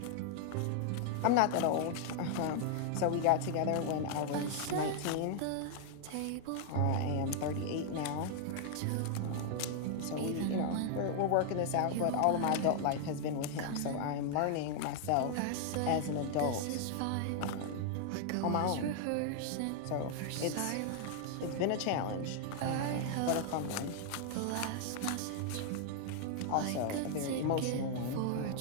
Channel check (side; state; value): both; different; correlation 0.00